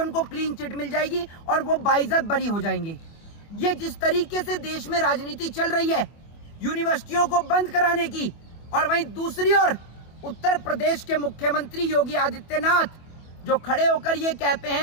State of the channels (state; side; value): late; right; 24 ms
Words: क्लीन चिट मिल जाएगी और वो बाइज्जत बरी हो जाएंगे। ये जिस तरीके से देश में राजनीति चल रही है, यूनिवर्सिटियों को बंद कराने की, और वहीं दूसरी ओर उत्तर प्रदेश के मुख्यमंत्री योगी आदित्यनाथ जो खड़े होकर ये कहते